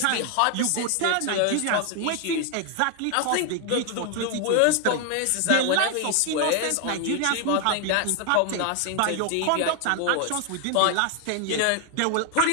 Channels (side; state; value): both; different; correlation 0.01